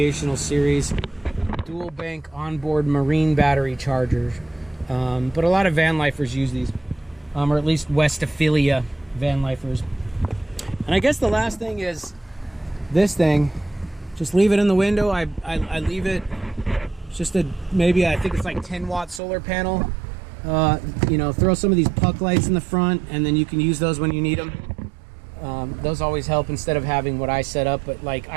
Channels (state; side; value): drops out; left; at 19.2 s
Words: Series Dual Bank Onboard Marine Battery Charger. But a lot of van lifers use these, or at least Westphalia van lifers. And I guess the last thing is this thing. Just leave it in the window. I leave it. It's just a, maybe I think it's like 10-watt solar panel. You know, throw some of these puck lights in the front, and then you can use those when you need them. Those always help instead of having what I set up. But like